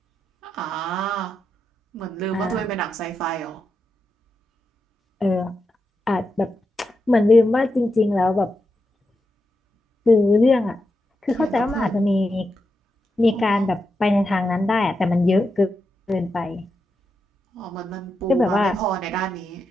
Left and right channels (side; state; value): both; normal; correlation 0.87